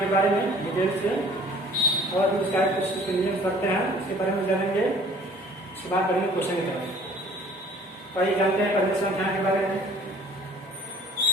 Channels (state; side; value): normal; both; correlation 0.52